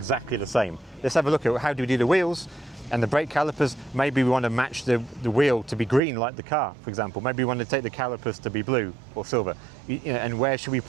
the same. Let's have a look at how do we do the wheels and the brake calipers. Maybe we want to match the wheel to be green like the car, for example. Maybe we want to take the calipers to be blue or silver. And where should we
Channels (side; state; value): left; drops out; at 6.0 s